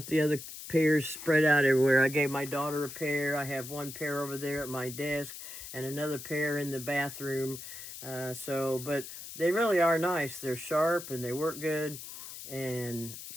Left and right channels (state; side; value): noise; left; hiss, 11 dB below the sound